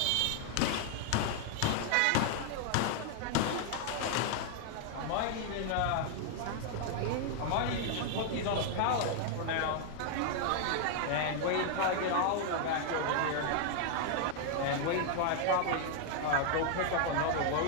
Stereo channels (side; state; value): both; different; correlation 0.00